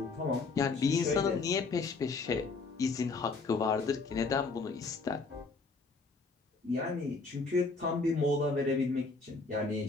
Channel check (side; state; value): right; quieter; 4.1 dB